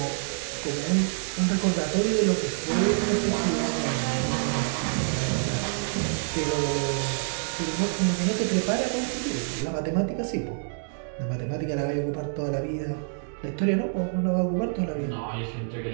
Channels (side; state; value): left; silent; digital silence